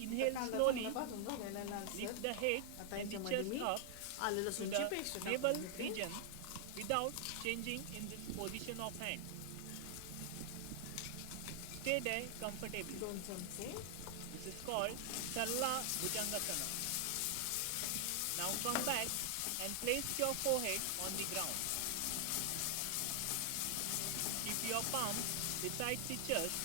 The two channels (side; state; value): both; different; correlation 0.00